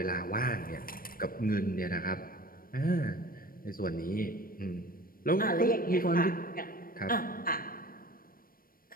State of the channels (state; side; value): late; right; 0.42 ms